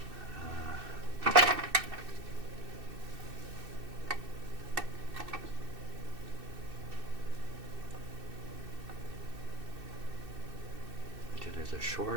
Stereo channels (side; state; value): left; late; 2.6 ms